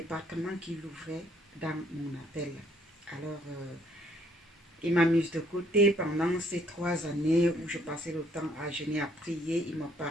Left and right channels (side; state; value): both; normal; correlation 0.65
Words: qui l'ouvrait dans mon appel. Alors, il m'a mise de côté pendant ces 3 années où je passais le temps à jeûner, à prier. Il me